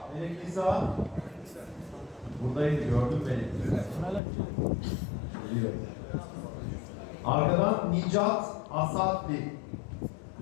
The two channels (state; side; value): drops out; right; at 4.2 s